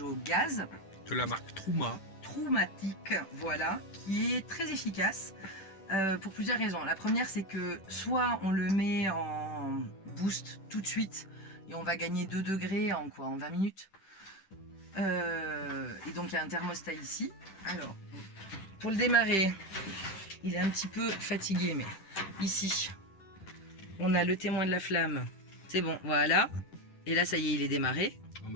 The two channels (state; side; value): late; right; 10 ms